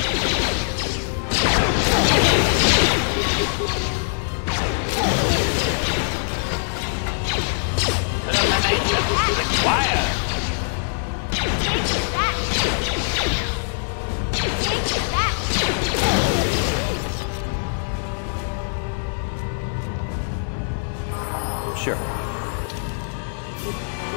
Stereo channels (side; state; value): right; silent; digital silence